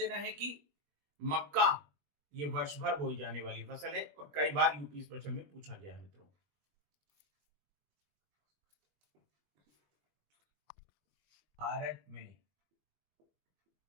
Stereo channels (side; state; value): left; late; 21 ms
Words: है कि मक्का ये वर्ष भर बोई जाने वाली फसल है और कई बार यूपी स्पेशल में पूछा गया है मित्रों। भारत में